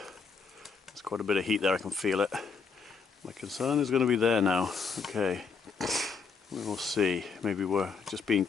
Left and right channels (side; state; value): right; quieter; 5.2 dB